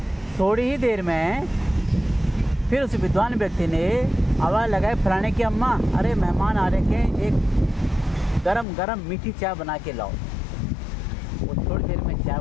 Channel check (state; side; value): drops out; right; at 8.7 s